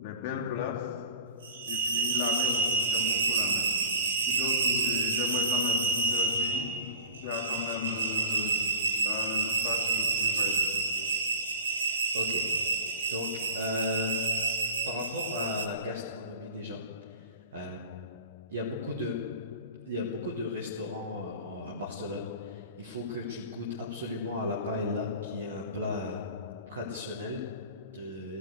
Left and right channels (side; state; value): both; inverted; correlation -0.38